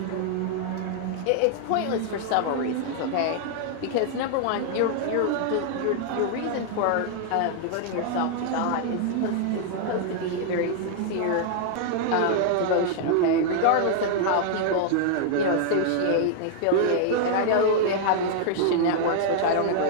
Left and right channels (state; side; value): different; both; correlation 0.00